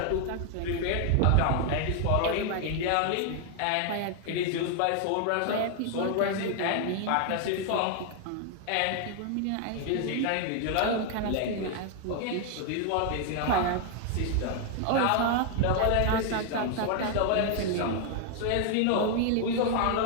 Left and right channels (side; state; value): both; different; correlation 0.00